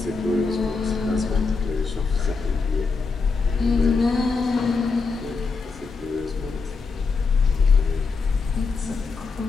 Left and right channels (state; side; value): quieter; right; 4.5 dB